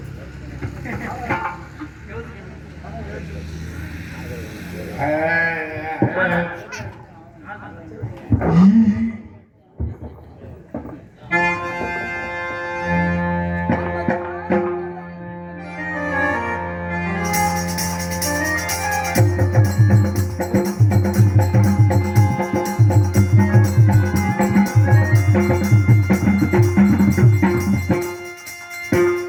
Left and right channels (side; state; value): both; identical; correlation 1.00